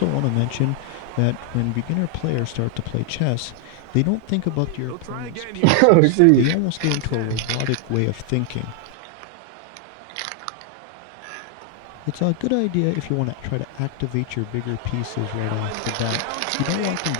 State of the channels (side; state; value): both; different; correlation 0.00